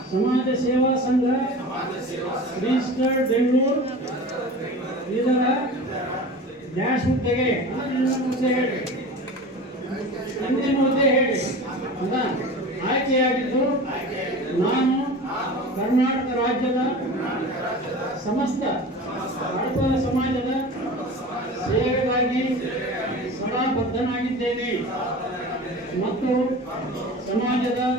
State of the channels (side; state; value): both; normal; correlation 0.35